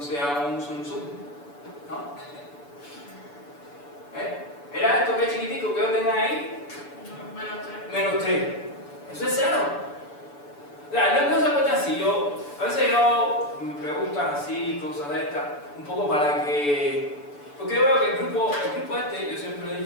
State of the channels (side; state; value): right; late; 6.9 ms